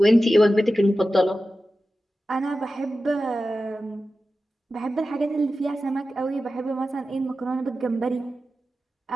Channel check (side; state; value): both; normal; correlation 0.93